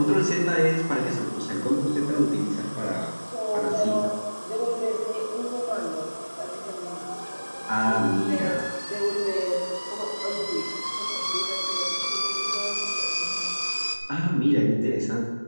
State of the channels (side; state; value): both; inverted; correlation -1.00